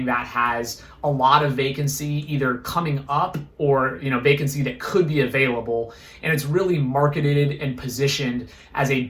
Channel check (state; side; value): identical; both; correlation 1.00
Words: that has a lot of vacancy either coming up or vacancy that could be available, and it's really marketed and positioned as a